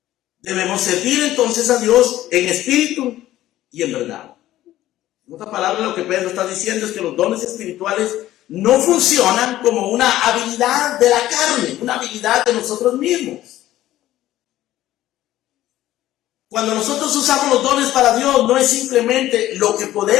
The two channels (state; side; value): quieter; right; 14.4 dB